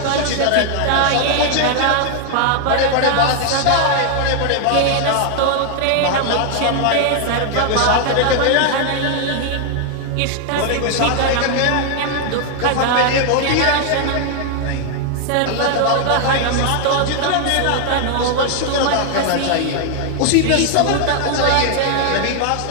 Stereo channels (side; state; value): both; different; correlation 0.00